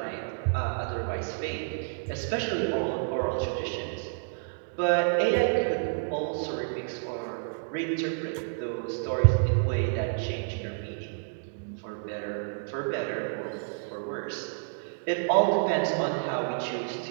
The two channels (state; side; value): silent; left; digital silence